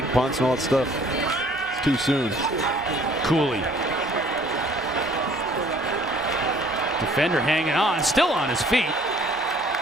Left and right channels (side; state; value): both; normal; correlation 0.56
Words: punts and all that stuff, it's too soon. Cooley. Defender hanging on, still on his feet.